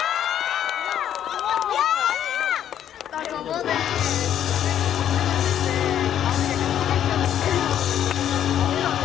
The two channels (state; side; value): quieter; right; 10.2 dB